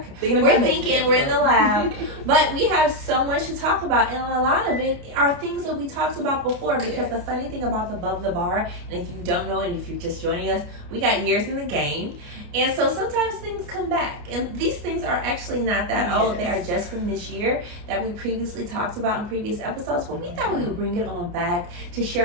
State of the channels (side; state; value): left; late; 29 ms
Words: Okay. We're in the lab. But we have so much to talk about, and a lot of it are things that we talked about before, because the funny thing about Above the Bar, and if you don't know, and if you're just joining us, we got years in the game. And so sometimes things come back, and these things are actually not that old. They are just from this year that we previously talked about in previous episodes, but we thought we would bring it on back to